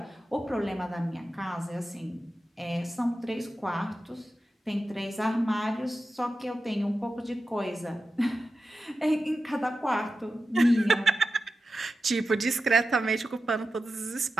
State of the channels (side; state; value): both; normal; correlation 0.92